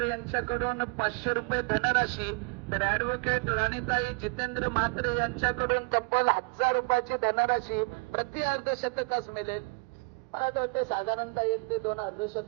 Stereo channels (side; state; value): left; quieter; 30.2 dB